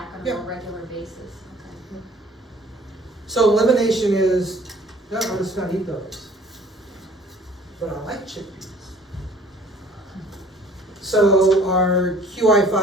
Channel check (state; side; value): normal; both; correlation 0.53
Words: on a more regular basis? Okay. So elimination is, no, I'm just gonna eat those. But I like chickpeas. So our